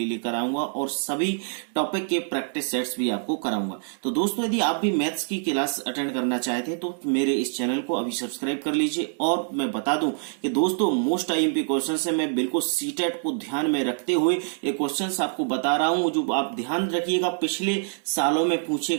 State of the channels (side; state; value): left; silent; digital silence